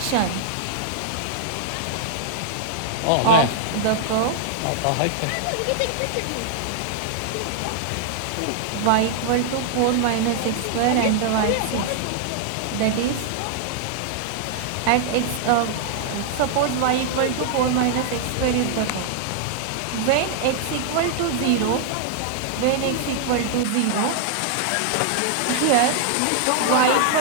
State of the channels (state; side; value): different; both; correlation -0.01